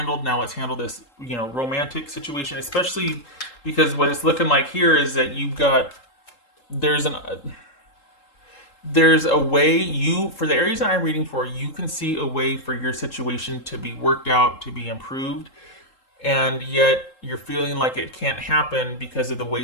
Now let's handle this, romantic situation, especially because what it's looking like here is that there's a way for the Aries that I'm reading for, you can see a way for your situation to be worked out, to be improved. And yet you're feeling like it can't happen because of the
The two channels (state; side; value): late; right; 3.8 ms